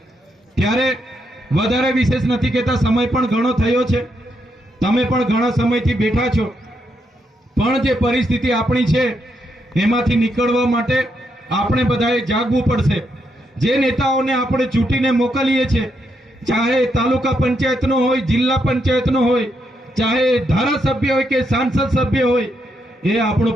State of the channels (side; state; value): both; normal; correlation 0.80